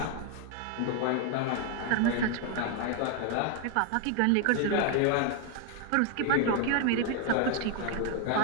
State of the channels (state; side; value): different; both; correlation 0.01